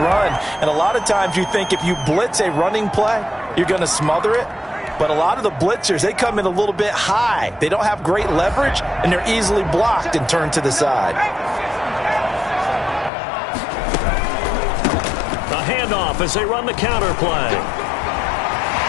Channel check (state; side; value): drops out; right; at 13.1 s